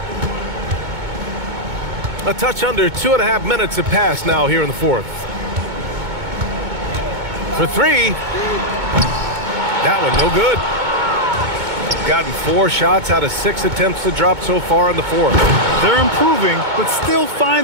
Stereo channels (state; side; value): late; left; 2.2 ms